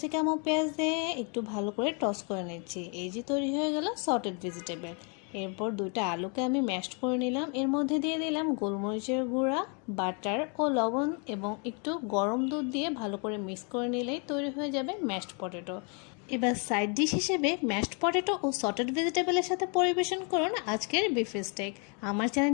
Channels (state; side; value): quieter; right; 36.7 dB